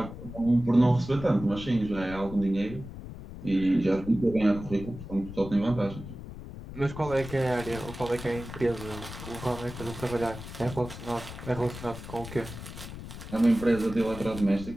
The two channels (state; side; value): noise; left; rumble, 12 dB below the sound